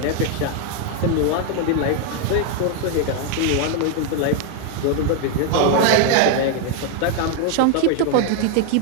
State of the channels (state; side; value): different; both; correlation 0.00